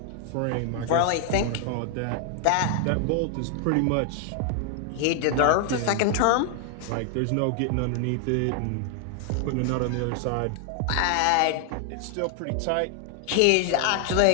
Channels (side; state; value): both; different; correlation 0.00